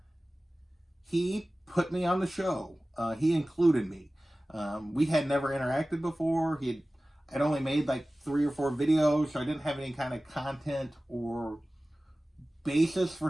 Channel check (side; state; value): both; normal; correlation 0.97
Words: he put me on the show. He included me. We had never interacted before. I'd only made like 3 or 4 videos, so I didn't have any kind of content or basis for